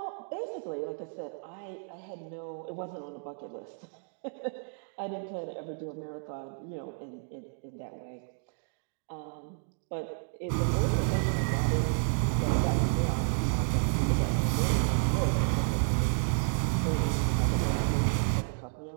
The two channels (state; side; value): silent; left; 57 dB below the other